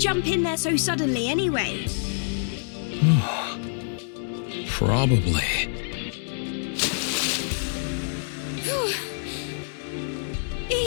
in there so suddenly anyway? Probably.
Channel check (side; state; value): right; silent; digital silence